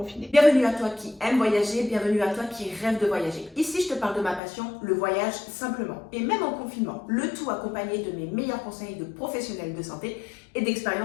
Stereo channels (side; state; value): right; drops out; at 4.4 s